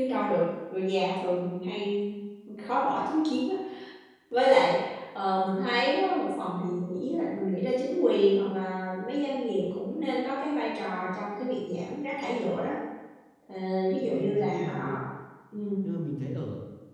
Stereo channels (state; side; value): identical; both; correlation 1.00